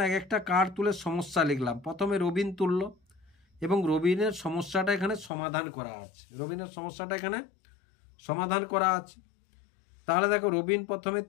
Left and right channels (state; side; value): drops out; right; at 5.3 s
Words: এক একটা কার্ড তুলে সমস্যা লিখলাম। প্রথমে রবিন তুলল এবং রবিনের সমস্যাটা এখানে সমাধান করা আছে। রবিনের সমস্যাটা এখানে সমাধান করা আছে। তাহলে দেখো রবিন প্রথমে